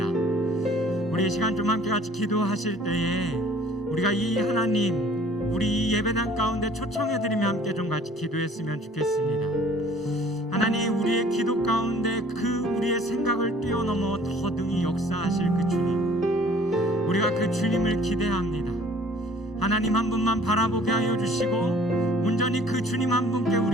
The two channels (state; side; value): normal; both; correlation 0.53